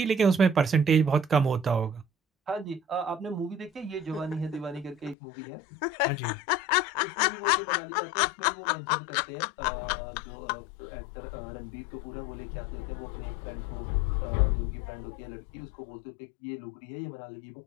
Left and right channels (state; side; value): drops out; right; at 5.2 s